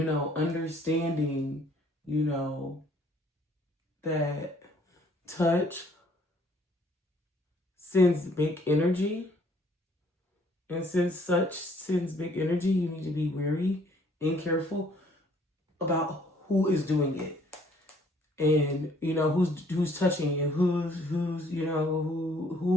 know, understanding, you know, that touch sends big energy. And since such sends big energy, you need to be wary and careful about who is doing it. And you know who's touching you, who's you know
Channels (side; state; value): both; normal; correlation 0.61